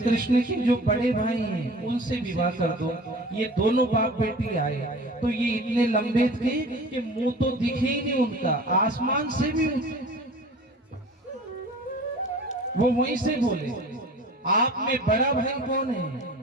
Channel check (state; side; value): normal; both; correlation 0.42